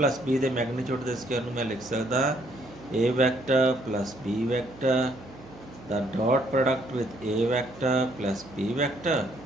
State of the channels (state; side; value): noise; right; hum, 19 dB below the sound